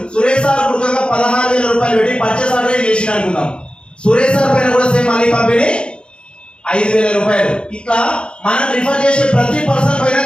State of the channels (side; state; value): right; late; 0.054 ms